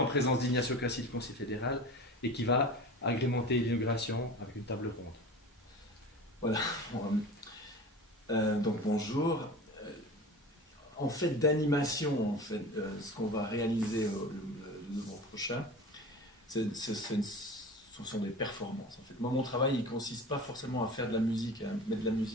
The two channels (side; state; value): both; normal; correlation 0.35